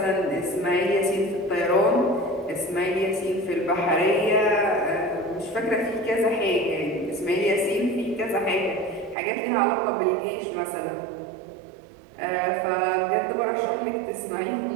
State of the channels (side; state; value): left; drops out; at 9.2 s